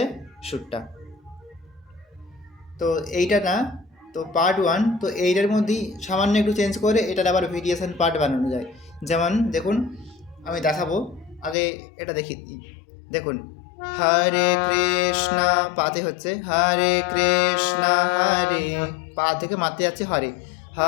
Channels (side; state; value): right; drops out; at 11.6 s